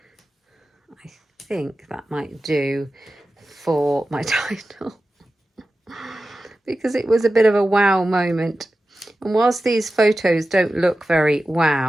I think that might do for my title. Because it was a bit of a wow moment. And whilst these photos don't look very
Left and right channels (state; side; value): normal; both; correlation 0.93